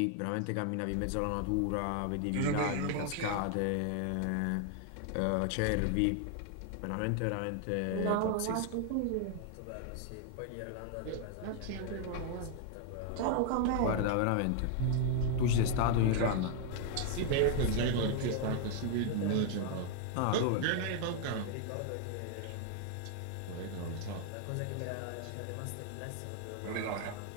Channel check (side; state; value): both; different; correlation 0.00